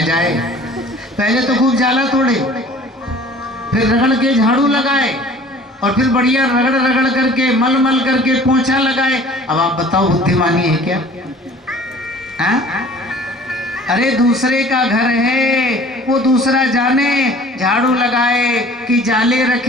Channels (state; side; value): normal; both; correlation 0.48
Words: जाए, पहले तो खूब जाला तोड़े, फिर रगड़ के झाड़ू लगाए, और फिर बढ़िया रगड़ रगड़ करके मल मल करके पोंछा लगाए। अब आप बताओ बुद्धिमानी है क्या? हाँ? अरे दूसरे का घर है, वो दूसरा जाने झाड़ू लगाए कि जाले